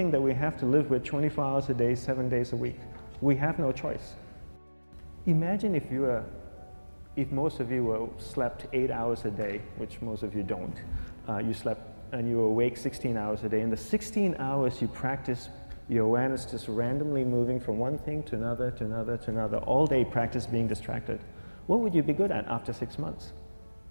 that we have to live with 24 hours a day, 7 days a week. We have no choice. Imagine if most of you slept 8 hours a day, which most of you don't. You slept and you were awake 16 hours a day. In the 16 hours you practice your awareness just randomly moving from one thing to another, to another, to another, all day practice being distracted. What would you be good at after 6 months?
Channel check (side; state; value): both; inverted; correlation -1.00